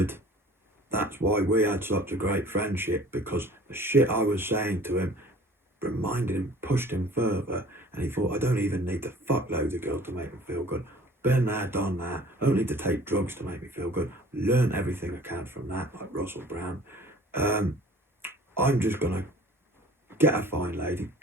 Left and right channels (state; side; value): normal; both; correlation 0.48